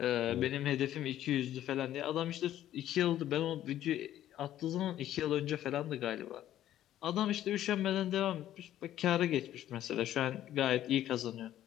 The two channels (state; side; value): quieter; right; 12.4 dB